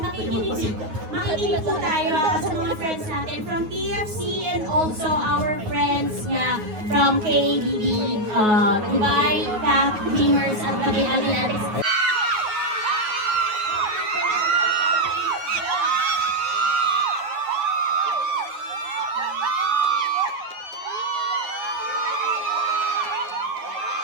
makikinig po tayo sa mga friends natin from TFC and also our friends nga from KBB, Dubai, CAF, Dreamers, at pati Adinatics.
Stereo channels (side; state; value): left; late; 9.4 ms